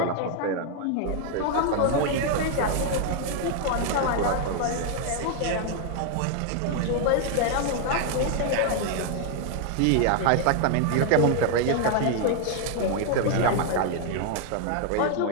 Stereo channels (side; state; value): both; different; correlation 0.00